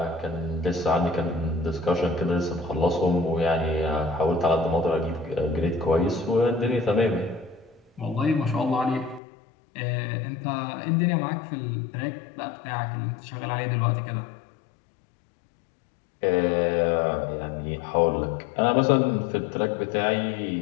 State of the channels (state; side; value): drops out; right; at 9.2 s